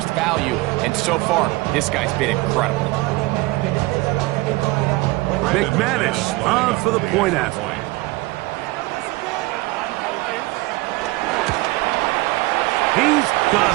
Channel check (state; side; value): quieter; left; 21.5 dB